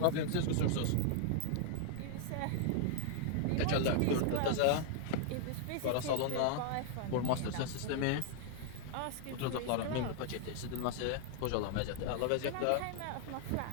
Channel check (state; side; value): different; both; correlation 0.00